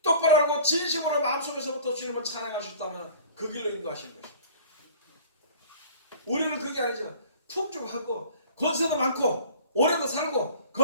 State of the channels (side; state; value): both; inverted; correlation -0.45